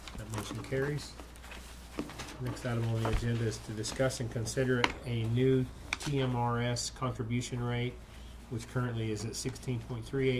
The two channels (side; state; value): both; identical; correlation 1.00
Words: motion carries. Next item on the agenda is to discuss and consider a new TMRS contribution rate, which currently is at